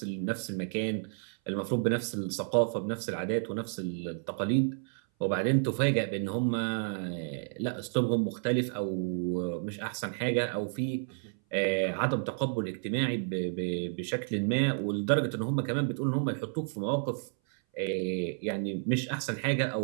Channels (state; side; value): silent; left; 57 dB below the other